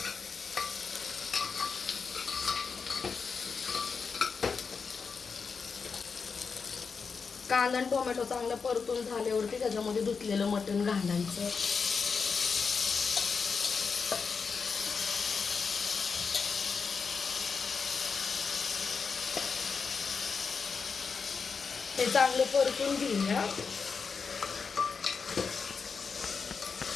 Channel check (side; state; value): right; quieter; 5.4 dB